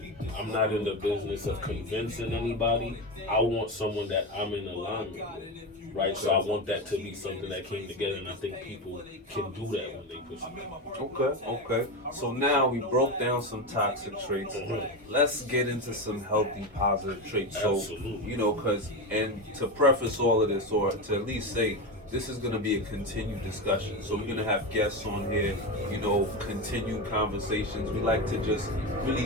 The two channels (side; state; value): both; normal; correlation 0.17